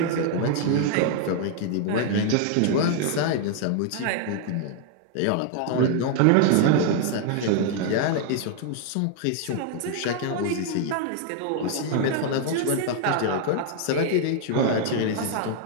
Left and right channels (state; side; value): different; both; correlation 0.00